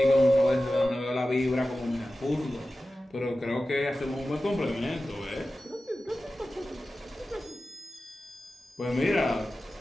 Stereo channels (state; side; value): normal; both; correlation 0.94